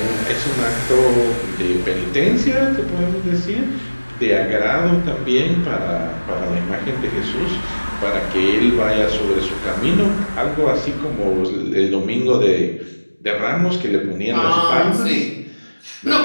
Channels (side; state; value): both; inverted; correlation -1.00